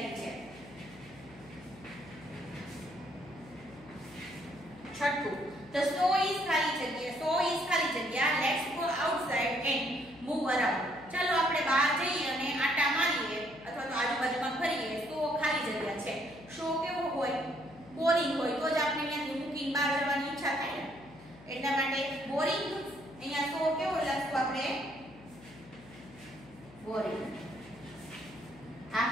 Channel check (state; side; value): noise; left; hum, 21 dB below the sound